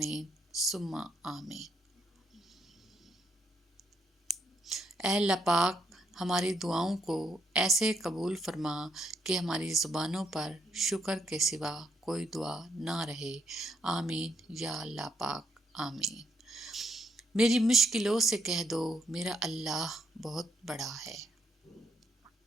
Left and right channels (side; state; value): both; normal; correlation 0.73